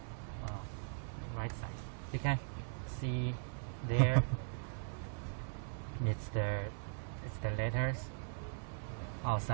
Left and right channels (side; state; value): left; silent; 51 dB below the other